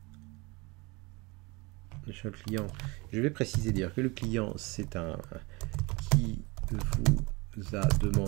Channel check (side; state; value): left; quieter; 26.1 dB